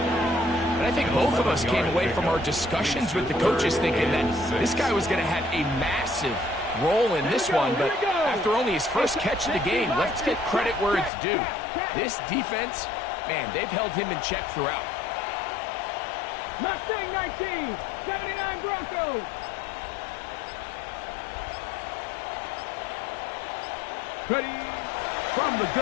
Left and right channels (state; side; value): drops out; right; at 11.1 s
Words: And I think both of us came away from our discussions with the coaches thinking that this guy was going to have a massive role in this one, but after only his first catch of the game, let's get credit where it's due. This defense, man, they've held him in check throughout. Mustang 19, 79 Broncos. Ready. From the